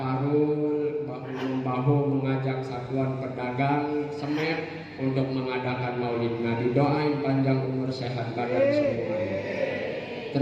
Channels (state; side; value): identical; both; correlation 1.00